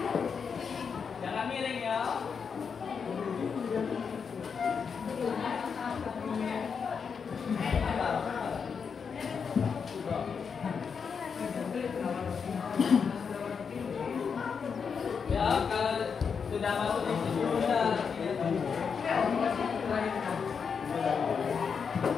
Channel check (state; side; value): quieter; right; 6.2 dB